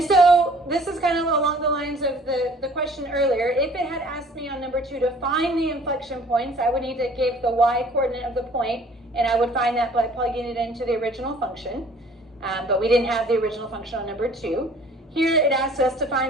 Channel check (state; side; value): normal; both; correlation 0.53